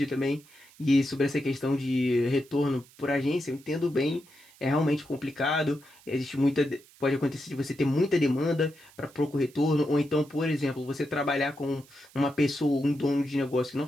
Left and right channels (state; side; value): noise; right; hiss, 26 dB below the sound